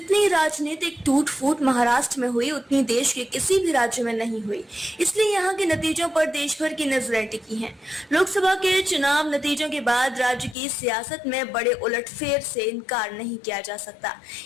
राजनीतिक टूट फूट महाराष्ट्र में हुई, उतनी देश के किसी भी राज्य में नहीं हुई। इसलिए यहाँ के नतीजों पर देश भर की नजरें टिकी हैं। लोकसभा के चुनाव नतीजों के बाद राज्य की सियासत में बड़े उलटफेर से इनकार नहीं किया जा सकता।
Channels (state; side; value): drops out; right; at 10.6 s